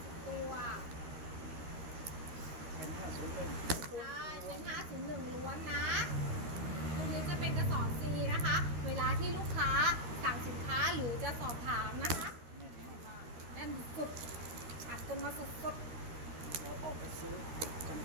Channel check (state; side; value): late; left; 13 ms